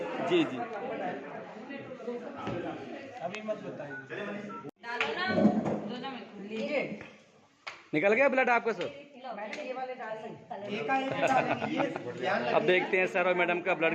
जी जी। अभी मत बताइए। निकल गया ब्लड आपका सर? अब देखते हैं सर और मैडम का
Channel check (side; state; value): both; identical; correlation 1.00